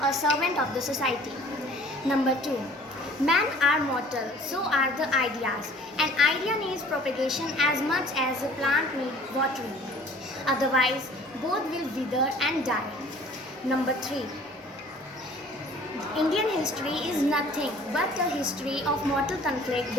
a servant of the society. Number 2. Men are mortal, so are the ideas. An idea needs propagation as much as a plant needs watering. Otherwise, both will wither and die. Number 3. Indian history is nothing but a history of mortal conflict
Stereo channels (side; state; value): both; normal; correlation 0.51